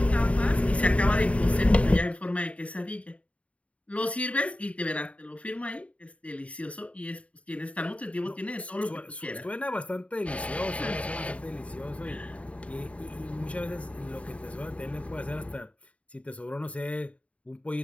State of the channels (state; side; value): late; right; 0.065 ms